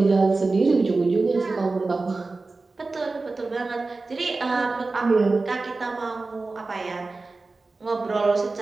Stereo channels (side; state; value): left; quieter; 3.6 dB